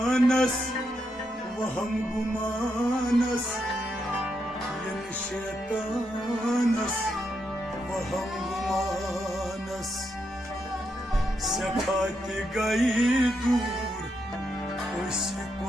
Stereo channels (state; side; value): normal; both; correlation 0.81